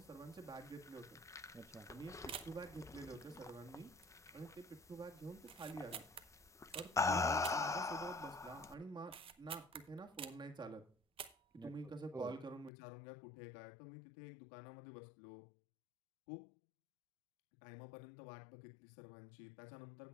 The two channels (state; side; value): drops out; right; at 12.7 s